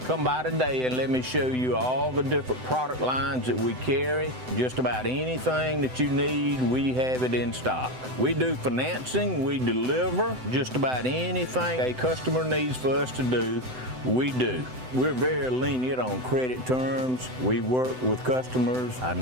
Come by today and let me show you all the different product lines that we carry. Just about anything that you need, we have it in stock. We do financing, we deliver just about anything a customer needs for us to do, we do. We're very lenient on credit terms. We work with customers. I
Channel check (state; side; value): late; left; 7.9 ms